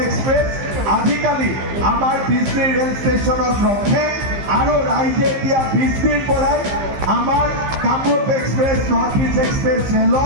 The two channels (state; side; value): late; left; 15 ms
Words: এক্সপ্ৰেছ আজিকালি আমাৰ BC ৰেল ষ্টেচনত ৰখে আৰু ৰাইজে এতিয়া BCৰ পৰাই আমাৰ Kamrup express, north east express